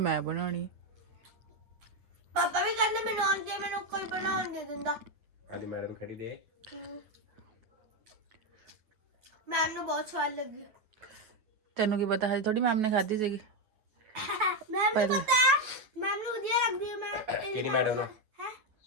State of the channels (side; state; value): left; late; 9.3 ms